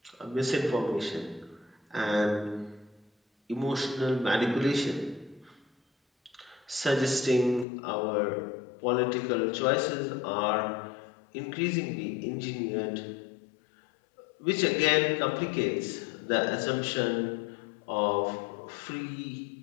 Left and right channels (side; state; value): right; drops out; at 7.7 s